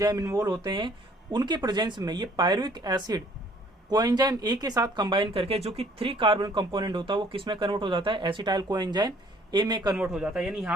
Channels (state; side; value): normal; both; correlation 0.59